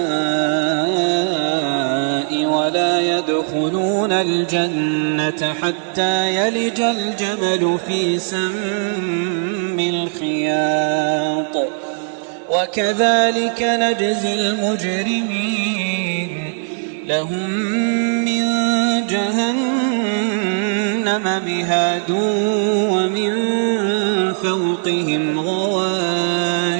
ولا يدخلون الجنة حتى يلج الجمل في سم الخياط وكذلك نجزي المجرمين لهم من جهنم مهاد ومن فوقهم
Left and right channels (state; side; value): silent; left; digital silence